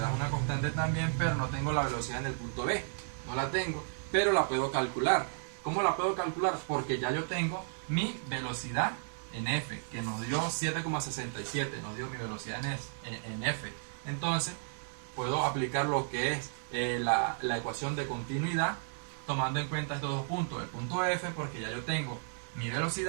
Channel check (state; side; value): silent; left; digital silence